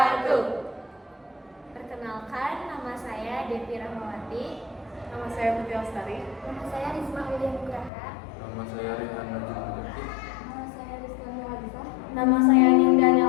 Perkenalkan, nama saya Devi Rahmawati. Nama saya Putri Lestari. Nama saya Risma William Nugraha. Nama saya Rehan Najib Mujaki. Nama saya Rizky Nuwalisa. Nama saya Ninda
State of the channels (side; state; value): right; drops out; at 7.9 s